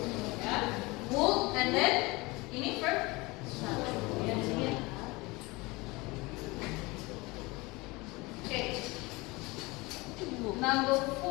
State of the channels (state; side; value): quieter; right; 23.6 dB